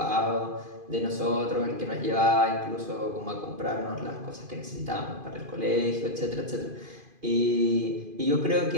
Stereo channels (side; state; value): left; late; 2.5 ms